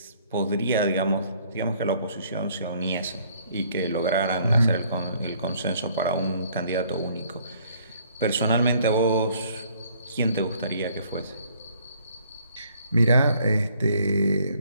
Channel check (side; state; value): both; inverted; correlation -0.63